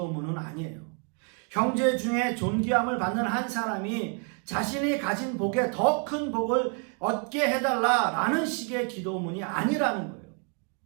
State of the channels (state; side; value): quieter; left; 38.1 dB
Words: 아니에요. 형제 중에 존귀함을 받는 한 사람이 자신이 가진 복에 더 큰 복을 얻게 해달라라는 식의 기도문이 아니라는 거예요.